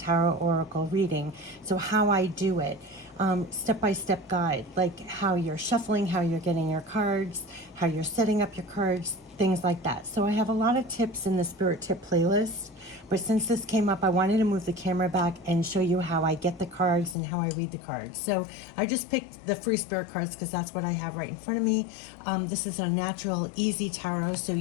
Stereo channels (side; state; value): right; drops out; at 17.2 s